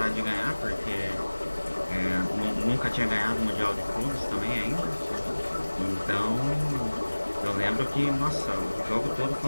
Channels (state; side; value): inverted; both; correlation -1.00